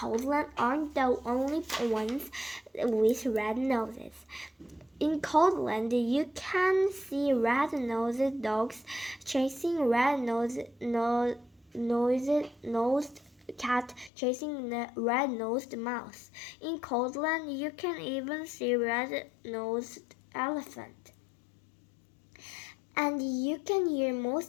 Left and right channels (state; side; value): drops out; right; at 14.1 s